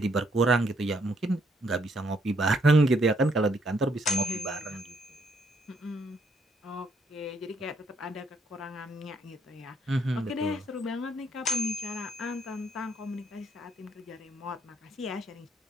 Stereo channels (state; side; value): normal; both; correlation 0.71